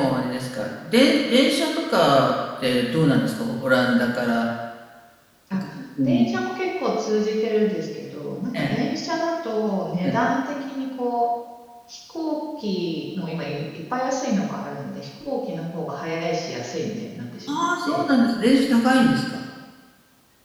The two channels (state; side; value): identical; both; correlation 1.00